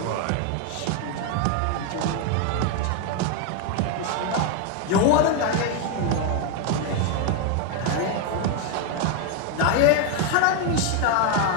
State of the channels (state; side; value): different; both; correlation 0.01